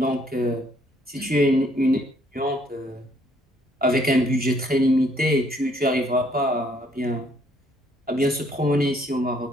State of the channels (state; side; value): normal; both; correlation 0.66